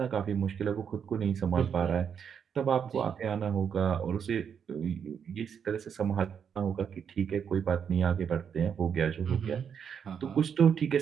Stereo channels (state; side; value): quieter; left; 7.5 dB